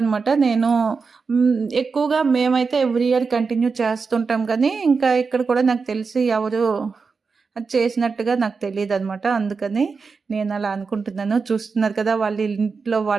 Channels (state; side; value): quieter; left; 4.9 dB